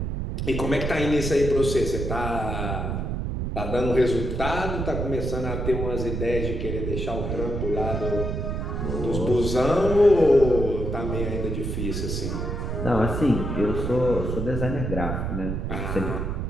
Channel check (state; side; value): noise; right; rumble, 2 dB below the sound